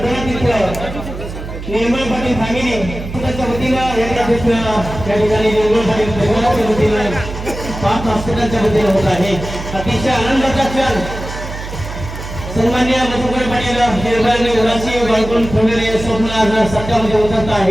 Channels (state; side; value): noise; right; hum, 9 dB below the sound